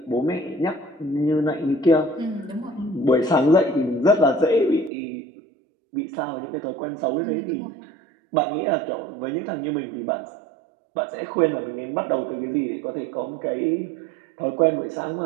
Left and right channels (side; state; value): left; drops out; at 4.9 s